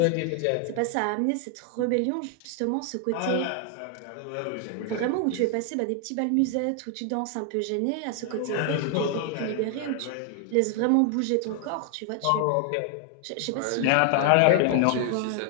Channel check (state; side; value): different; both; correlation 0.00